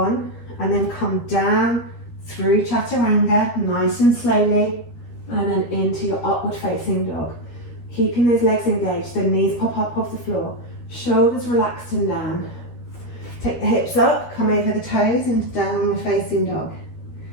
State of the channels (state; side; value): late; right; 13 ms